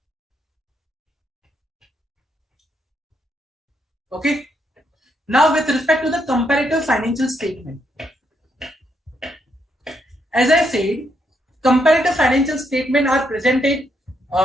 Okay. Now, with respect to the comparative financial statement, as I said, comparative financial statement are presented.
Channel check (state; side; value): normal; both; correlation 0.77